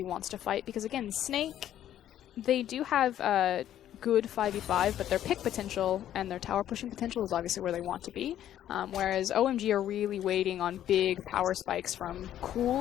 wants to fight, because again, Snake, they do have a good 5v5, but their pick potential and their tower pushing potential is obviously where they want to be, whereas OMG are really waiting on big power spikes from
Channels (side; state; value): right; quieter; 11.5 dB